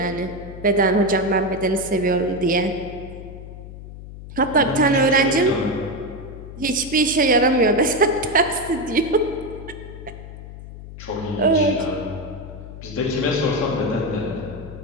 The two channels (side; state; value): left; noise; hum, 13 dB below the sound